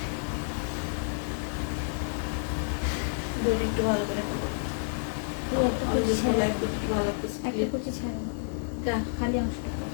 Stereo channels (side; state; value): right; silent; digital silence